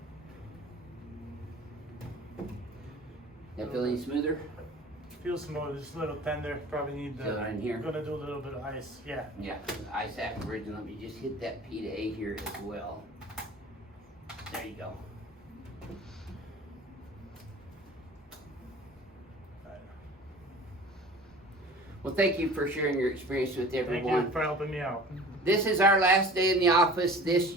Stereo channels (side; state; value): both; normal; correlation 0.43